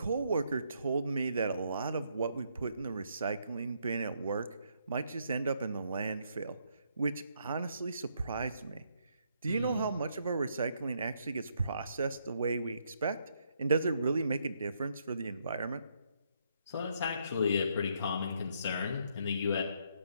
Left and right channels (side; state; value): both; inverted; correlation -0.74